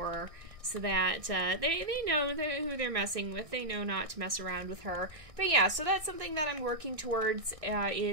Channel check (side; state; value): left; late; 1.6 ms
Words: so that they know who they're messing with. They know not to mess around with her. But yeah, so that's something that I'm working towards,